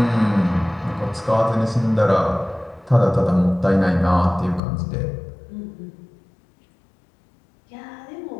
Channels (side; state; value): right; drops out; at 4.6 s